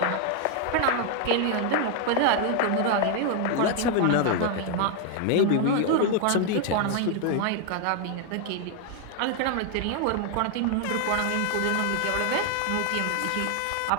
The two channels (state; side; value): different; both; correlation 0.00